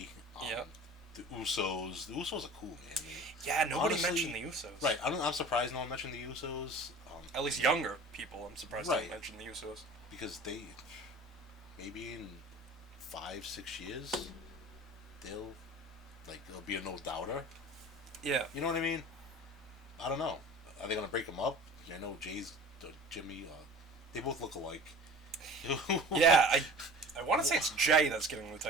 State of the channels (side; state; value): both; normal; correlation 0.41